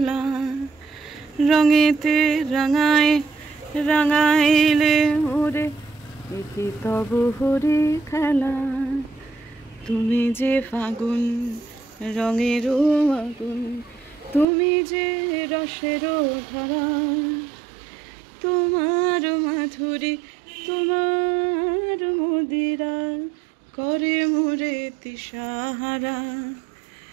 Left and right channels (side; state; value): left; drops out; at 14.5 s